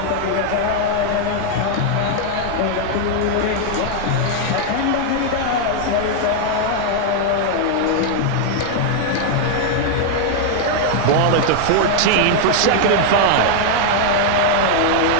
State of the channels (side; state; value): both; different; correlation 0.00